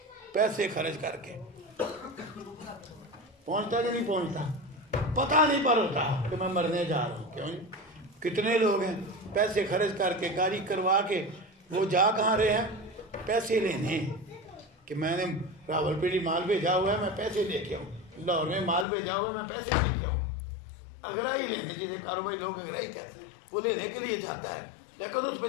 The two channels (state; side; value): drops out; right; at 18.9 s